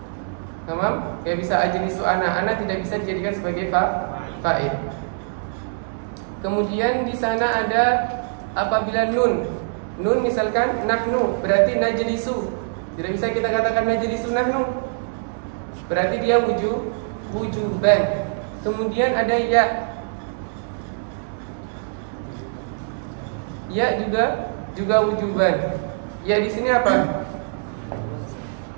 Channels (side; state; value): left; silent; digital silence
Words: Tamam? Enggak bisa ajlisu ana. Ana tidak bisa dijadikan sebagai fa'il. Kemudian di sana ada apabila nun. Nun misalkan nahnu, berarti najlisu. Tidak bisa kita katakan najlisu nahnu. Berarti dia wujuban. Kemudian ada ya. Ya juga wujuban. Ya di sini apa?